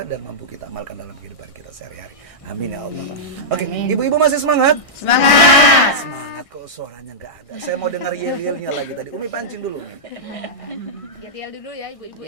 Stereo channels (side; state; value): right; late; 1.6 ms